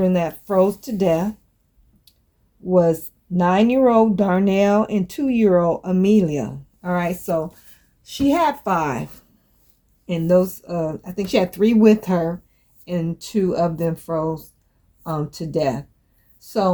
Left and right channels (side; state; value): both; identical; correlation 1.00